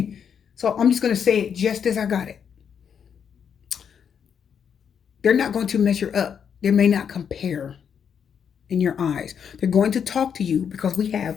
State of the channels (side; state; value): right; quieter; 7.6 dB